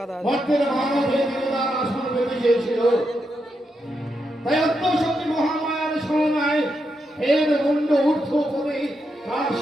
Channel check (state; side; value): normal; both; correlation 0.83